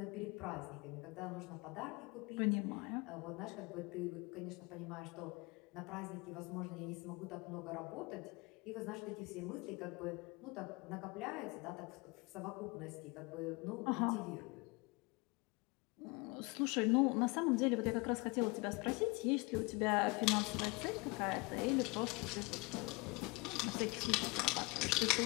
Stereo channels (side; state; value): right; quieter; 26.7 dB